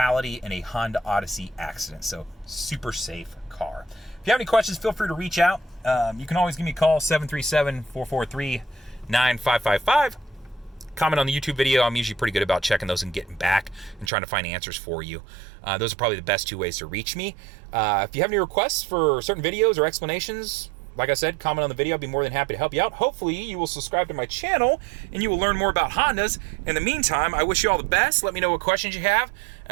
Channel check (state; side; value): drops out; left; at 14.1 s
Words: in a Honda Odyssey accident. So super safe car. If you have any questions, feel free to reach out. You can always give me a call, 737-443-9555. Comment on the YouTube video. I'm usually pretty good about checking those and getting back and trying to find answers for you. Those are probably the best 2 ways to reach me. If you have any requests for certain videos or explanations, like I said, comment on the video. I'll be more than happy to help you out. Hopefully, you will subscribe to my channel and you will learn more about Hondas. In the meantime, I wish you all the best. Let me know what questions you have,